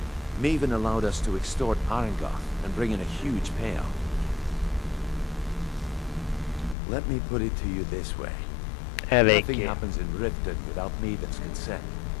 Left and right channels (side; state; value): right; drops out; at 6.8 s